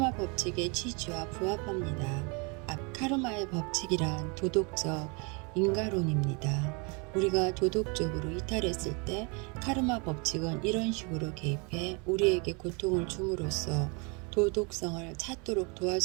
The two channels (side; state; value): left; quieter; 32.0 dB